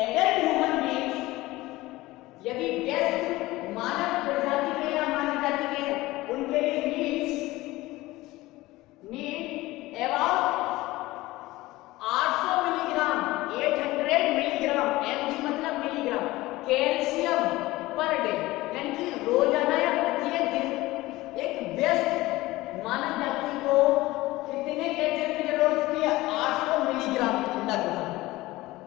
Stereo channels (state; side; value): quieter; right; 18.8 dB